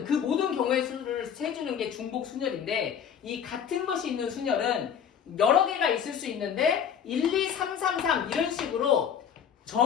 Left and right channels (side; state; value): right; quieter; 8.1 dB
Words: 그 모든 경우의 수를 세주는 게 중복 순열인데 이 같은 것이 있는 순열은 여러 개가 있을 수 있는데 1, 2, 3, 3, 3 이런 식으로